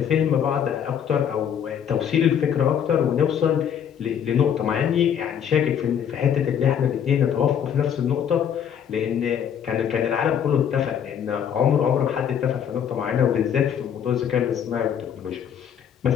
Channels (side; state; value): right; quieter; 8.6 dB